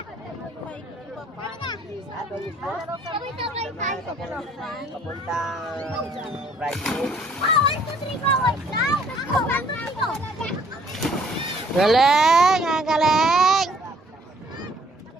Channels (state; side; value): normal; both; correlation 0.60